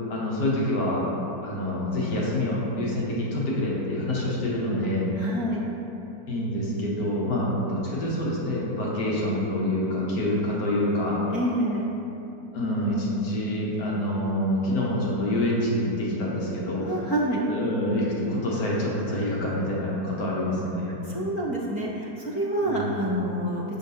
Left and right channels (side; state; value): right; late; 4.4 ms